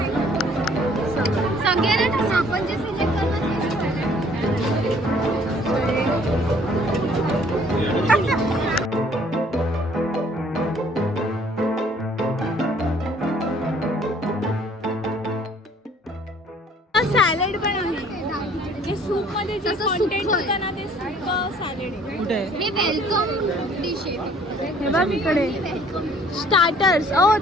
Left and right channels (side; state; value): both; normal; correlation 0.58